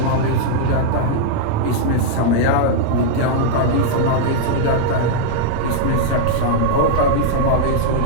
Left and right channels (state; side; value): different; both; correlation -0.01